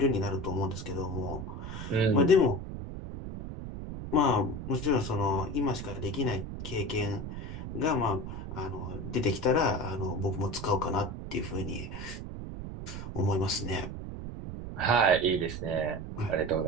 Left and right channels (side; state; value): right; noise; rumble, 8 dB below the sound